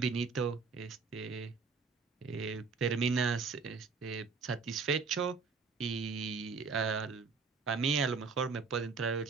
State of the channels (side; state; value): left; quieter; 4.9 dB